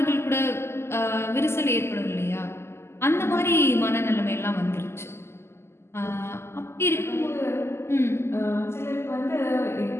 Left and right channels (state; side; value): late; right; 0.12 ms